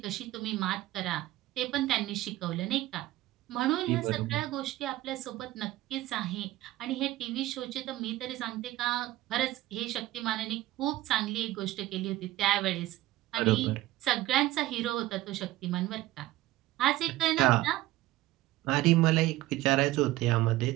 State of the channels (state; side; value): quieter; left; 16.2 dB